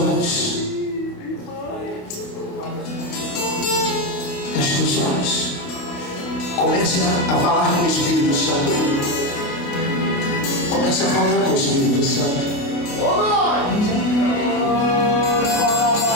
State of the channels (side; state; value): right; late; 28 ms